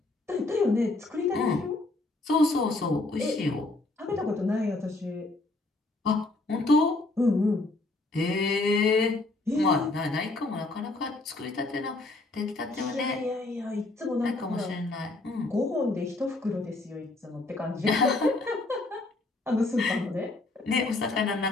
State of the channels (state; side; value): quieter; right; 3.0 dB